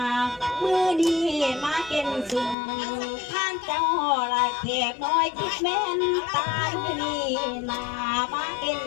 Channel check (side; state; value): right; drops out; at 2.6 s